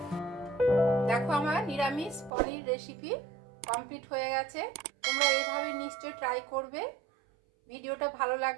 দেখো আমার নিরামিষ পনির রেসিপি কমপ্লিট হয়ে গেছে। তোমরা এভাবে নিশ্চয়ই ট্রাই করবে। ভিডিওটা ভালো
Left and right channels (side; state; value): left; drops out; at 2.3 s